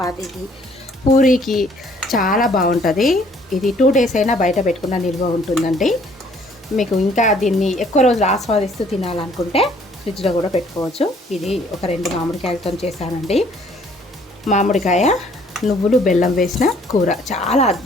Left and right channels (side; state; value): both; normal; correlation 0.60